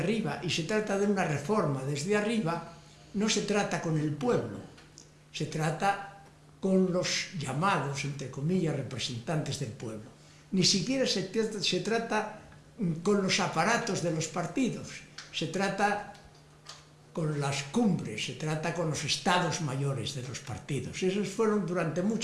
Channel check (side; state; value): both; identical; correlation 1.00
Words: y se trata de una reforma desde arriba, no se trata con el pueblo, se trata con los llamados, entre comillas, representantes del pueblo. Ni siquiera se trata con los aparatos de los partidos, se trata con las cumbres, se trata con los estados mayores de los partidos. Esos fueron durante